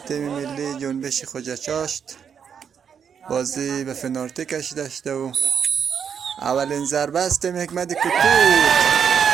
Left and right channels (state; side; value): quieter; left; 7.4 dB